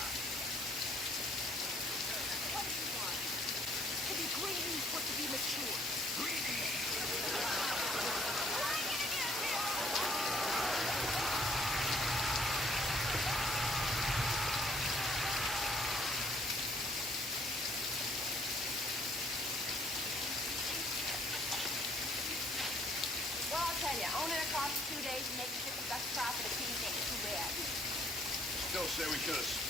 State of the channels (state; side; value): normal; both; correlation 0.63